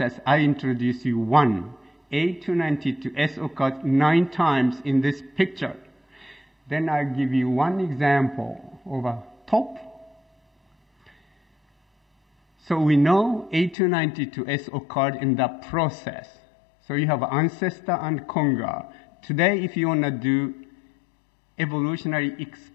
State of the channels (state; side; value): drops out; right; at 13.8 s